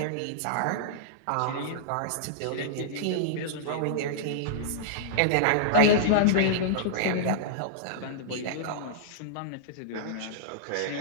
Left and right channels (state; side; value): different; both; correlation -0.02